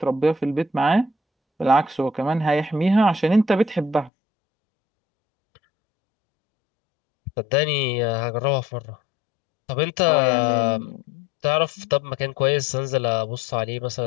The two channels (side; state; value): right; drops out; at 4.1 s